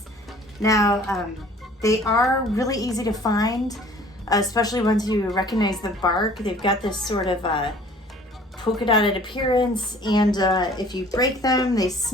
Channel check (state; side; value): normal; both; correlation 0.51